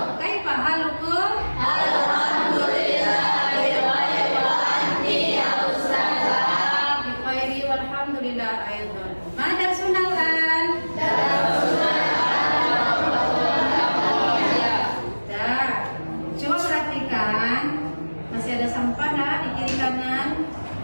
Kaifa halukum? Alhamdulillah. Wa anti ya ustazah. Bi khairi walhamdulillah aidan. Mada sunalan. Masih ada sampah nah, di kiri kanan.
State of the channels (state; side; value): inverted; both; correlation -1.00